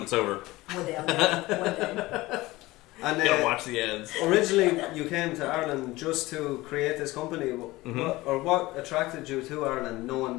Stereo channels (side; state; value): right; quieter; 19.4 dB